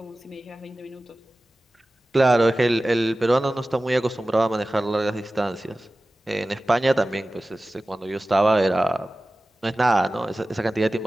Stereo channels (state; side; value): normal; both; correlation 0.96